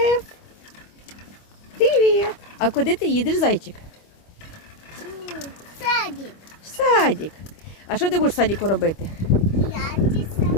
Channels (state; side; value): late; right; 25 ms